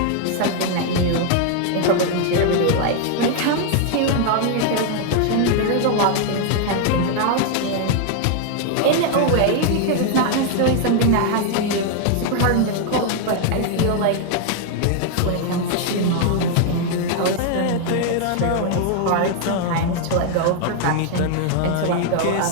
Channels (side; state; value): both; different; correlation 0.00